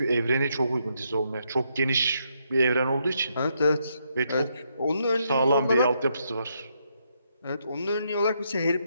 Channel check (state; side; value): inverted; both; correlation -0.77